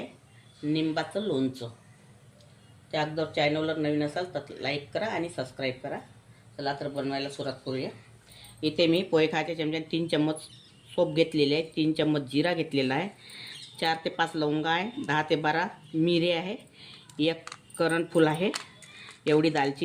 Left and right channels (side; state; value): both; identical; correlation 1.00